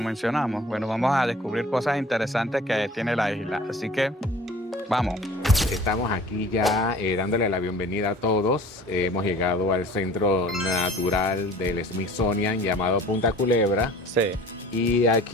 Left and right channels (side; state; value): both; normal; correlation 0.47